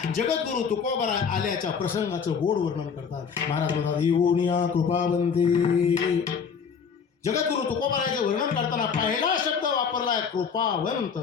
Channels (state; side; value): quieter; right; 6.4 dB